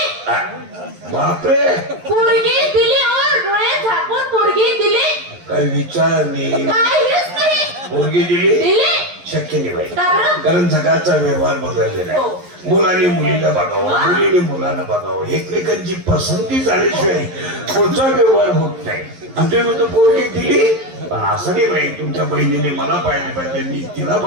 बापरे पोरगी दिली और डोळे झाकून पोरगी दिली. काही विचार नाही. पोरगी दिली शक्य नाही बाई. कारण जगाचा व्यवहार बदललेला आहे. मुलाने मुलीला बघावं मुलीने मुलाला बघावं. एकमेकांची पसंती झाल्याशिवाय पुढचा व्यवहार होत नाही. आमच्या म्हणतो पोरगी दिली पण असं नाही बाई तुमच्या बहिणीने मला पाहिलं पाहिजे मी तिला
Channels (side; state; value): left; late; 11 ms